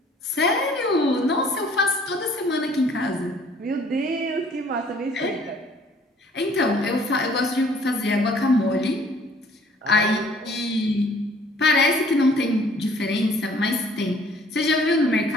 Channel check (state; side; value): normal; both; correlation 0.57